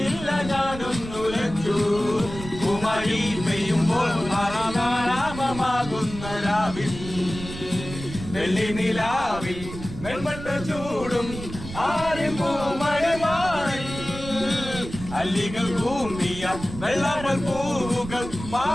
ഞാനൊന്നുലച്ചു കുമാരി പെയ്യുമ്പോൾ മറിയാരാപമാകുന്ന രാവിൽ വെള്ളി നിലാവിൽ വെൺമട്ട ചൂടും ആരും പൂമഴമാറിൽ അല്ലികൾ കൂമ്പിയ വെള്ളാമ്പൽ പൂവുകൾ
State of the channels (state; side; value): noise; right; rumble, 11 dB below the sound